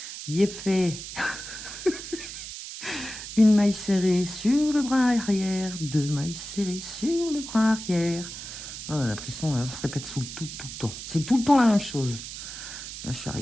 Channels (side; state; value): right; noise; hiss, 10 dB below the sound